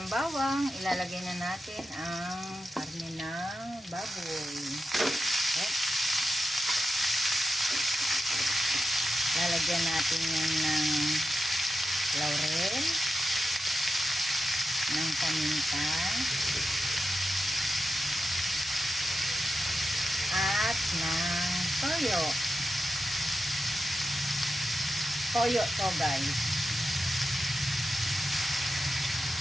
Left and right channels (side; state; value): both; normal; correlation 0.90